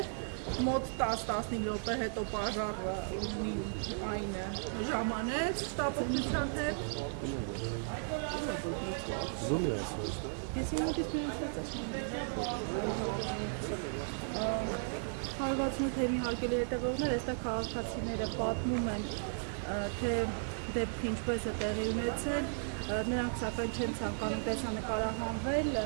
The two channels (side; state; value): left; silent; digital silence